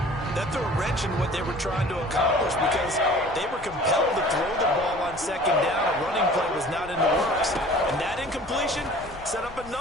that threw a wrench in what they were trying to accomplish because they were compelled to throw the ball on second down. A running play was not in the works. And that incompletion set up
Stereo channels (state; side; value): noise; left; rumble, 19 dB below the sound